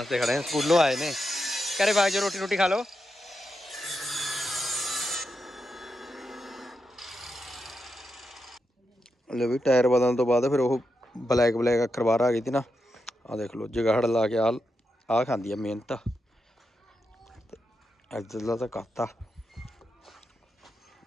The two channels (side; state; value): both; normal; correlation 0.86